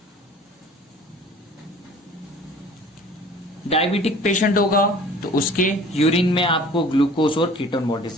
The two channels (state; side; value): normal; both; correlation 0.47